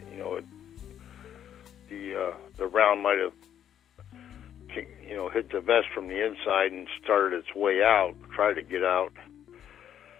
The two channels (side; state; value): right; quieter; 9.9 dB